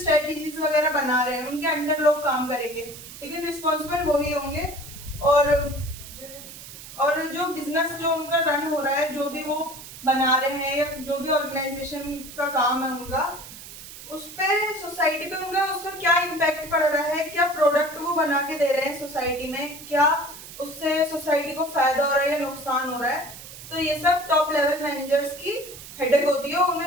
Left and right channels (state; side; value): noise; right; hiss, 14 dB below the sound